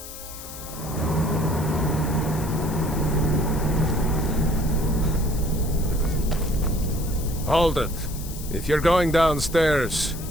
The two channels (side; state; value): left; noise; hiss, 13 dB below the sound